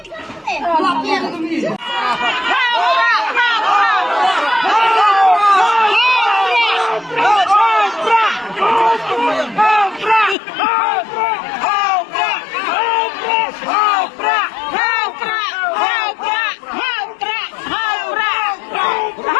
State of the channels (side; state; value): right; drops out; at 10.4 s